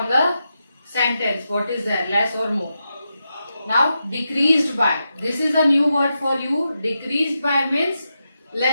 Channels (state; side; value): inverted; both; correlation -0.87